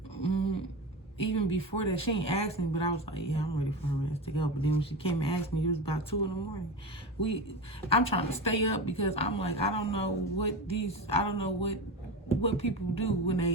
Even before that, she ain't asked me, but I was like, yeah, I'm ready for her ass to go. But then when she came and asked me, it was about 2 in the morning. I'm trying to stay up because I'm like, I don't know what people do when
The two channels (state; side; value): normal; both; correlation 0.24